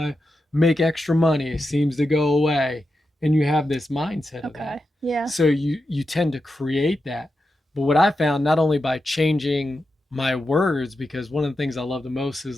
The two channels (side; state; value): both; normal; correlation 0.89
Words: make extra money, it seems to go away. And you have this mindset of that. Okay. Yeah. So you tend to create that. But what I found, not only by changing my words, because one of the things I love the most